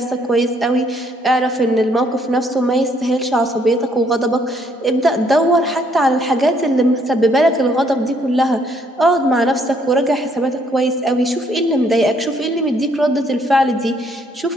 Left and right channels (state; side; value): normal; both; correlation 0.68